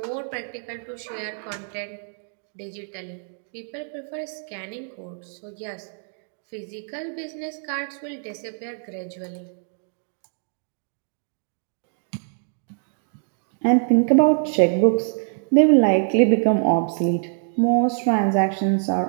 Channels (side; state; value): left; silent; 62 dB below the other